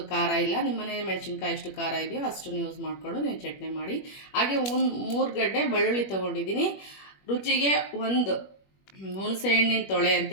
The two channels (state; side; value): late; right; 21 ms